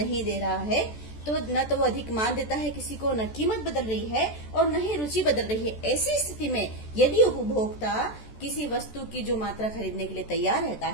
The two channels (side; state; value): right; late; 14 ms